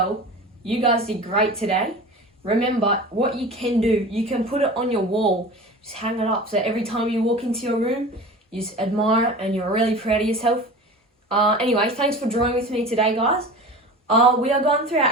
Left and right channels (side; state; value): both; normal; correlation 0.35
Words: You guys did great today. Remember, what you can do, you can put it on your wall, just hang it up, so every time you walk into your room, you just admire it and you're really proud of yourself. Anyway, thanks for drawing with me today guys. We are going through our